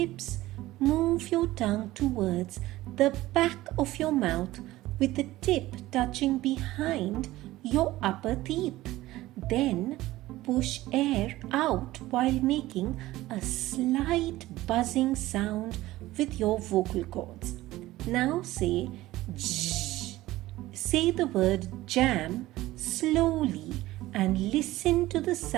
Move your tongue towards the back of your mouth with the tip touching behind your upper teeth. Then push air out while making a slight buzzing sound with your vocal cords. Now say J. Say the word jam slowly and listen to the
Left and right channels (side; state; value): left; quieter; 17.0 dB